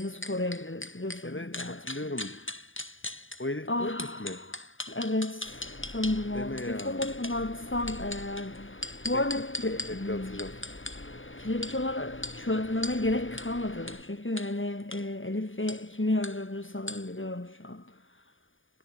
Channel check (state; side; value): late; right; 0.57 ms